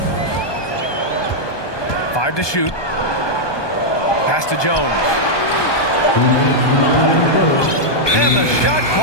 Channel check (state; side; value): late; right; 1.2 ms